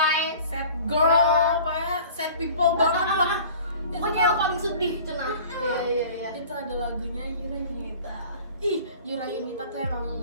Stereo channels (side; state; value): both; inverted; correlation -0.44